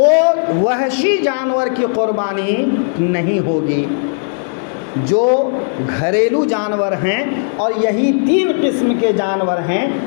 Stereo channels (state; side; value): silent; right; digital silence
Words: وحشی جانور کی قربانی نہیں ہوگی۔ جو گھریلو جانور ہیں اور یہی 3 قسم کے جانور ہیں،